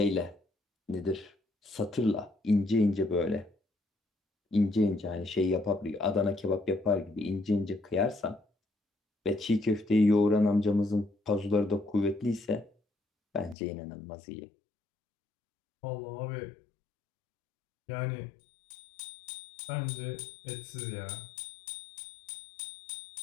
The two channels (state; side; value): drops out; right; at 13.6 s